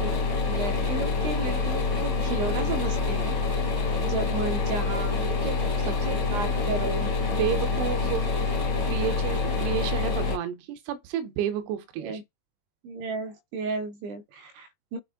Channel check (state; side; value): late; left; 20 ms